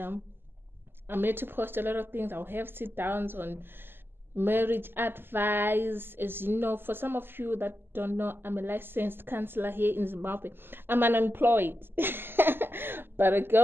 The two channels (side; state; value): left; late; 0.10 ms